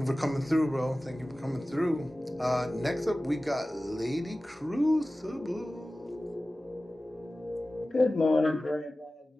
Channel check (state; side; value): normal; both; correlation 0.96